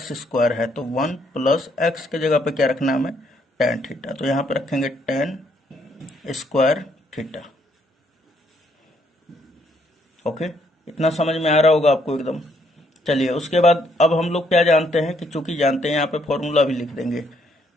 है, तो 1 + x के जगह पे क्या रखना है हमें, tan थीटा, तो यहाँ पे रखेंगे tan² थीटा। ओके, इतना समझ में आ रहा होगा आपको एकदम। चलिए, उसके बाद अब हम लोग क्या जानते हैं कि चूंकि जानते हैं, यहाँ पे फॉर्मूला भी लिख देंगे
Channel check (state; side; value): normal; both; correlation 0.70